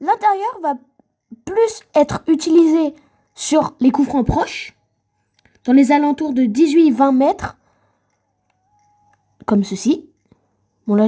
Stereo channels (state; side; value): identical; both; correlation 1.00